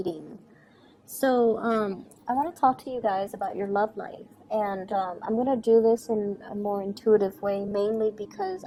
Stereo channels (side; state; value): both; identical; correlation 1.00